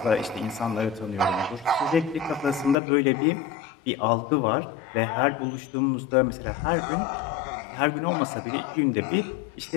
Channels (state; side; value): drops out; right; at 2.8 s